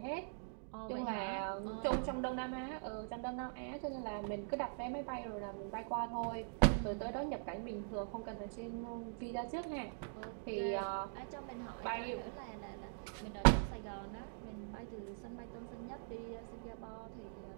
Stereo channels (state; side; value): silent; left; digital silence